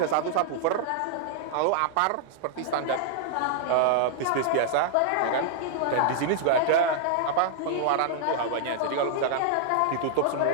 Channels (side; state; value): both; different; correlation -0.01